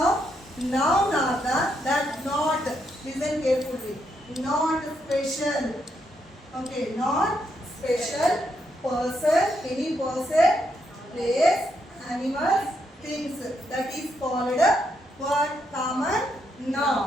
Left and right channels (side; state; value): both; normal; correlation 0.78